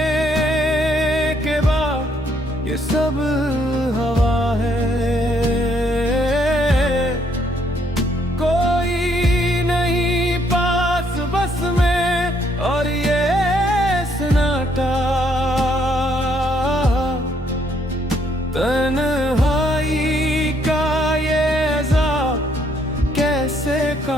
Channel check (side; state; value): both; normal; correlation 0.69